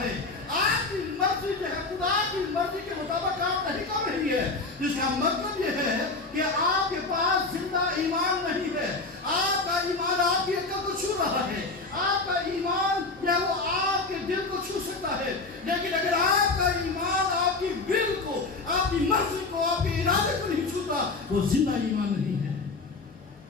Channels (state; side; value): quieter; right; 3.7 dB